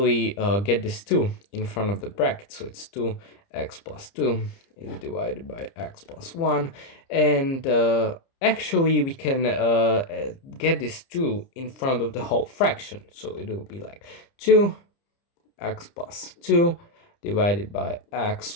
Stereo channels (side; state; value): right; late; 30 ms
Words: get this 2 in front of the bracket, so it's 2x plus 2 is divided by x plus 1, and actually we can get this 2 in front of the whole fraction, so it will be like 2x plus 2 divided by x